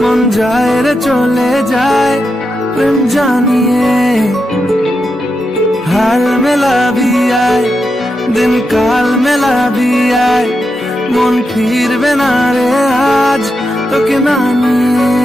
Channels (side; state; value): both; normal; correlation 0.87